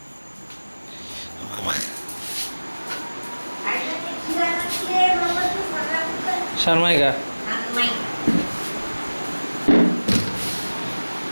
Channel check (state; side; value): inverted; both; correlation -1.00